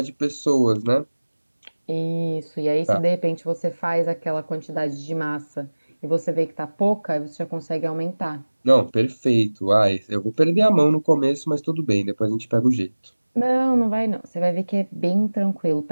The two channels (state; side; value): inverted; both; correlation -1.00